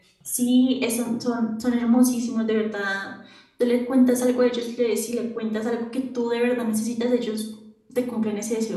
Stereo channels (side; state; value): both; identical; correlation 1.00